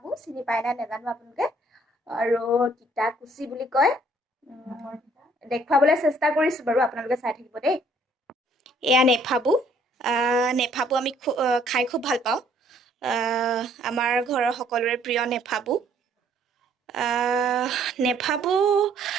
চিনি পায় না নেজানো আপোনালোকে আৰু তিতা কুচি বুলি কয় দেখুৱাবলৈ চেষ্টা কৰিছো বাৰু আপোনালোকে চাই থাকিব দেই এয়া নেফাবু নেফাবু আমি খাই খুব ভাল পাওঁ আমাৰ ঘৰৰ সকলোৰে প্ৰিয় নেফাবু নেফাবু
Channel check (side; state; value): both; normal; correlation 0.62